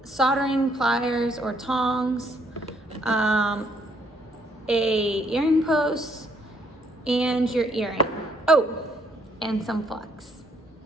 soldering pliers or tongs, a earring post, and your earring. Oh, and some flux.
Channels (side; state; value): both; normal; correlation 0.69